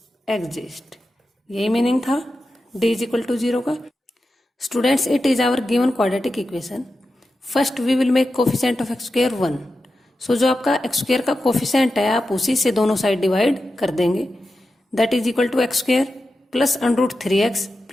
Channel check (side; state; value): both; normal; correlation 0.91